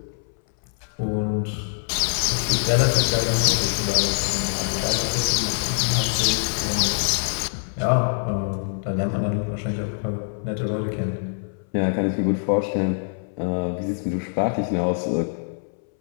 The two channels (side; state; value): right; silent; 61 dB below the other